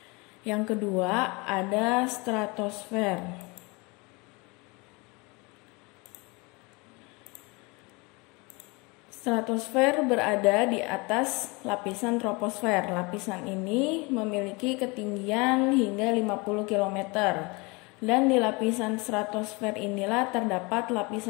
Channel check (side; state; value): right; quieter; 27.3 dB